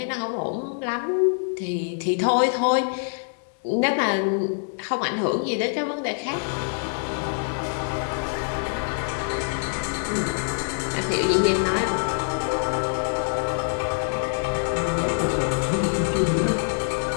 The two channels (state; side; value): silent; right; digital silence